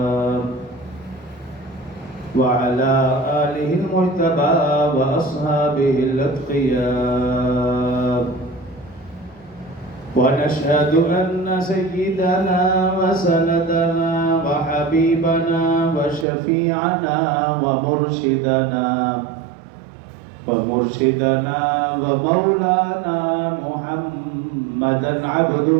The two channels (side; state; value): left; drops out; at 16.2 s